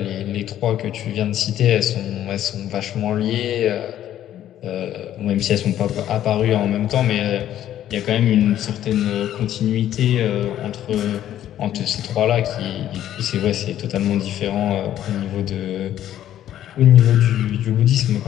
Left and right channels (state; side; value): quieter; right; 11.7 dB